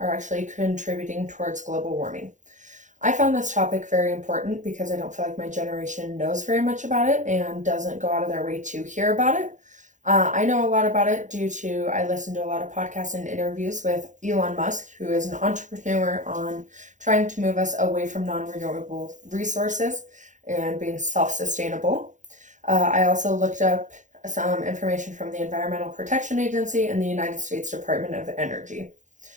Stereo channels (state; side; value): late; left; 0.36 ms